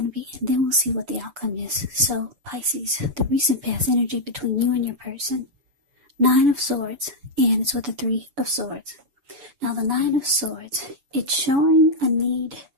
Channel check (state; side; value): late; left; 7.0 ms